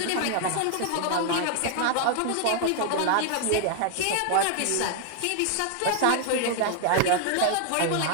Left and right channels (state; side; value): different; both; correlation 0.00